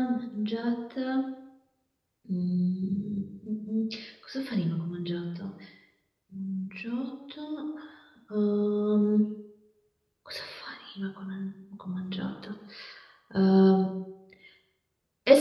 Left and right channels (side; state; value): both; identical; correlation 1.00